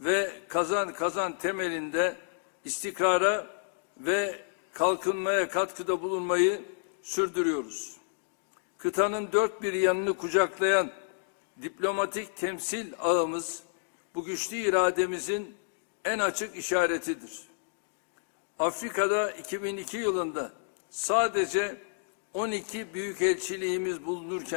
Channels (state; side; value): silent; right; digital silence